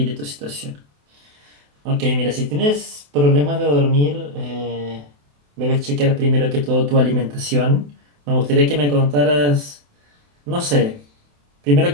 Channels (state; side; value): late; left; 28 ms